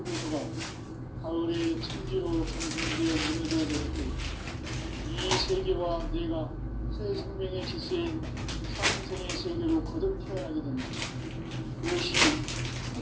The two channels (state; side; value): identical; both; correlation 1.00